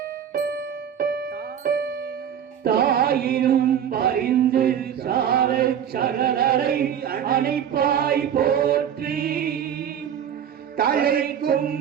தாயினும் பரிந்து சார சகலரை அணைப்பாய் போற்றி, தலைக்கும்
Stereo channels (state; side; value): quieter; left; 8.9 dB